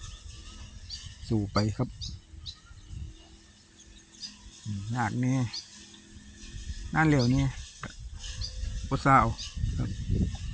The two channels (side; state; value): both; identical; correlation 1.00